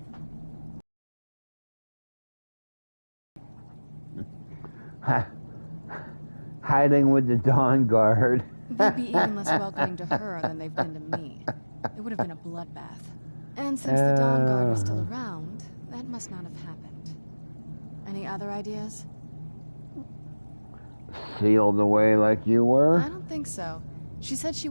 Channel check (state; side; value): inverted; both; correlation -1.00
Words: Hiding with the Dawn Guard. They'd be even less welcoming to her than they've been to me. It would have been a bloodbath. And since the Dawn Guard is still around, that must not have happened. Any other ideas? Sealed away like you were? I don't think so. She said she